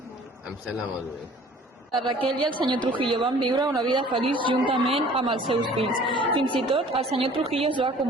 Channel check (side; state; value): both; normal; correlation 0.51